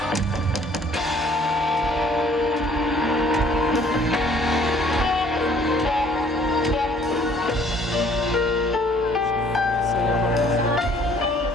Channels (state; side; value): normal; both; correlation 0.58